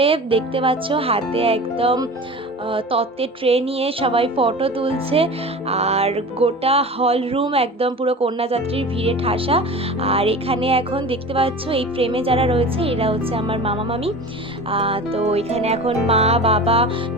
দেখতে পাচ্ছ হাতে একদম তত্ত্বের ট্রে নিয়ে সবাই ফটো তুলছে। আর গোটা হল রুম একদম পুরো কন্যাযাত্রীর ভিড়ে ঠাসা। আর এখানে এখন দেখতে পাচ্ছ এই ফ্রেমে যারা রয়েছে এরা হচ্ছে আমার মামা মামি। তো এখানে এখন মা বাবা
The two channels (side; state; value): both; normal; correlation 0.35